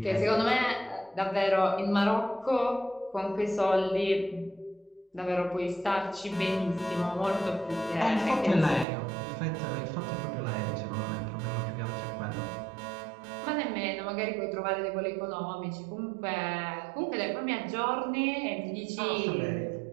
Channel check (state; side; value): drops out; left; at 8.8 s